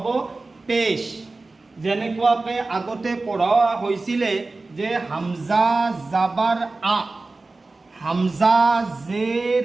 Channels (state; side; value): quieter; left; 3.4 dB